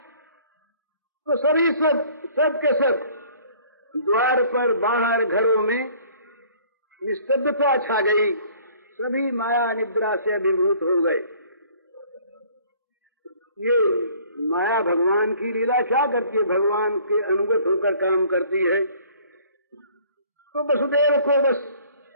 तो सभी सब के सब द्वार पर बाहर घरों में निस्तब्धता छा गई, सभी माया निद्रा से अभिभूत हो गए। ये माया भगवान की लीला क्या करती है, भगवान के अनुगत होकर काम करती है। तो वसुदेव को बस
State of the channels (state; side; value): inverted; both; correlation -0.55